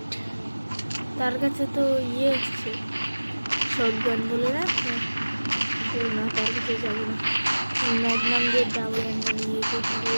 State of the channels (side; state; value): both; inverted; correlation -1.00